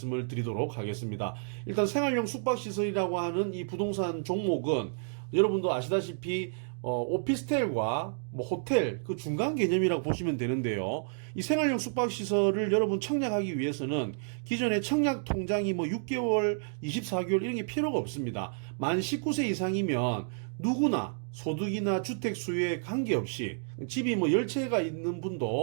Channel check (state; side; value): silent; left; digital silence